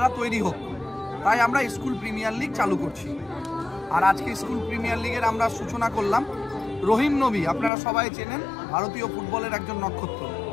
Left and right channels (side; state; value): right; drops out; at 7.7 s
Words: তৈরি হোক, তাই আমরা স্কুল প্রিমিয়ার লিগ চালু করছি। আর আজকে স্কুল প্রিমিয়ার লিগের আমরা সূচনা করলাম। রহিম নবী আপনারা সবাই চেনেন, ভারতীয় ফুটবলের একজন নক্ষত্র,